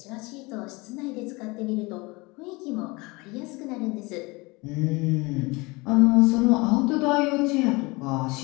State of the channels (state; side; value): quieter; right; 24.8 dB